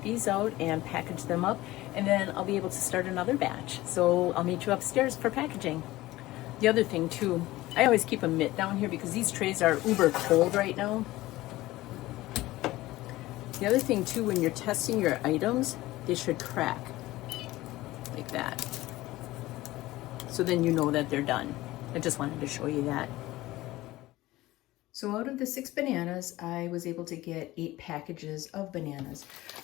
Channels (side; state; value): right; quieter; 17.7 dB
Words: these out and package them up, and then I'll be able to start another batch. So I'll meet you upstairs for packaging. The other thing too, I always keep a mitt down here because these trays are uber cold right now. The other thing too, when you're testing your items, they should crack like that. So then you know that they're done. I just wanted to show you that. So out of the 6 bananas, I was able to get 8 packages of bananas.